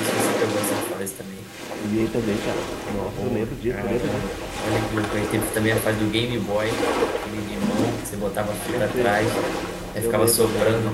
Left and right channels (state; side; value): identical; both; correlation 1.00